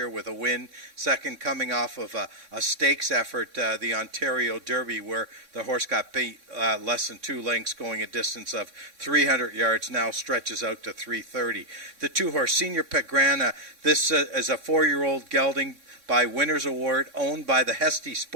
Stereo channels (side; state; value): left; late; 3.6 ms